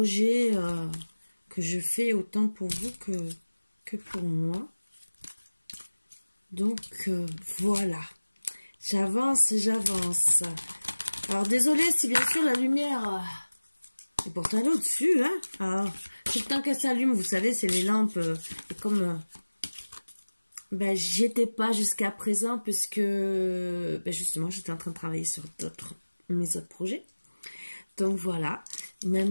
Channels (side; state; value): both; inverted; correlation -1.00